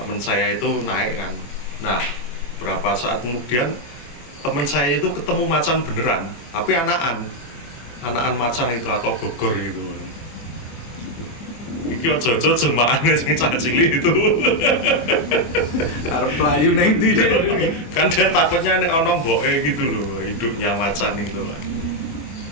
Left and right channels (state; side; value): late; right; 24 ms